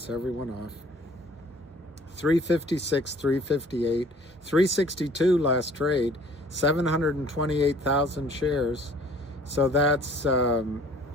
everyone off. 356, 358, 362 last trade, 728,000 shares. So that's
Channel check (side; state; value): both; normal; correlation 0.54